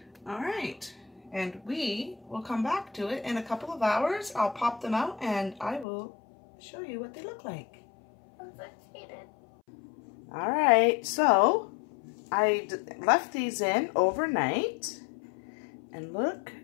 All right. And we will come back to it in a couple of hours. I'll pop them out and I will show you what they look like. I'm so excited. All right, so I left these in overnight and look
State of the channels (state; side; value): drops out; right; at 5.9 s